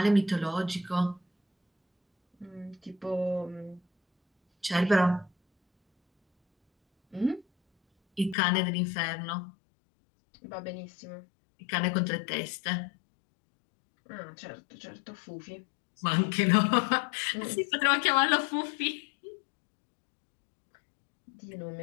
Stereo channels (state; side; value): drops out; right; at 8.3 s